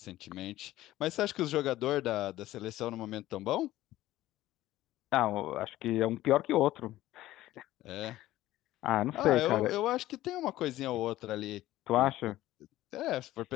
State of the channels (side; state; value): right; quieter; 15.4 dB